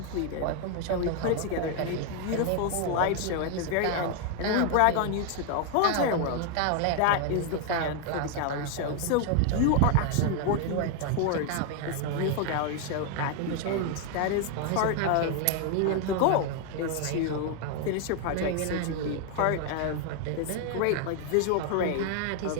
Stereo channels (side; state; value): both; different; correlation 0.00